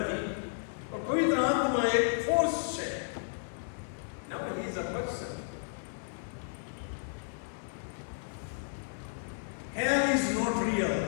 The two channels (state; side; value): silent; right; digital silence